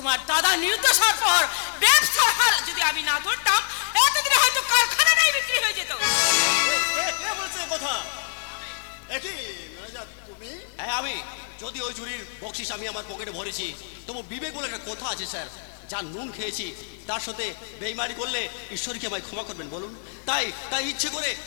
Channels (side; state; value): right; silent; digital silence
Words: দাদা নির্দোষ হওয়ার পর ব্যবসার হাল যদি আমি না ধরতাম, এতদিনে হয়তো কারখানাটাই বিক্রি হয়ে যেত। কে বলছে কথা? একই ম্যানেজার তুমি? হ্যাঁ আমি। যদি ওই চুরির বকশিস আমি আমার পকেটে ভরেছি, তবু বিবেক বলে একটা কথা আছে স্যার। যা নুন খেয়েছি তার সাথে বেইমানি করলে ঈশ্বরকে আমায় ক্ষমা করবেন বলুন। তাই তাই ইচ্ছে করে